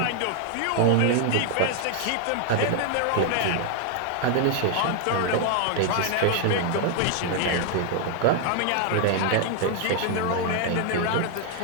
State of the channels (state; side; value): different; both; correlation 0.00